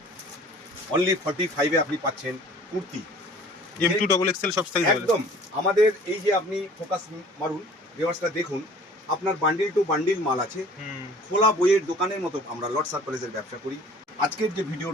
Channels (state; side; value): normal; both; correlation 0.49